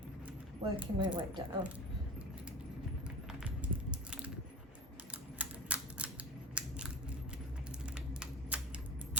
working my way down.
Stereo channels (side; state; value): both; normal; correlation 0.30